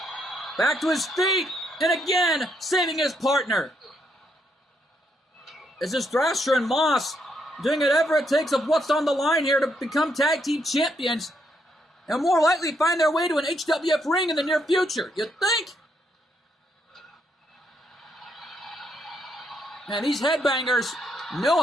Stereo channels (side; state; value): both; normal; correlation 0.76